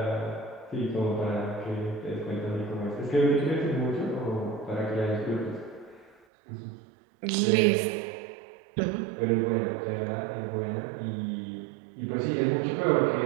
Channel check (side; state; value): left; drops out; at 6.2 s